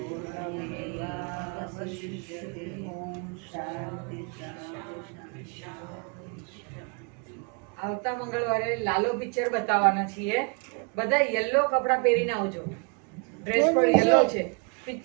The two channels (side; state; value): left; quieter; 35.3 dB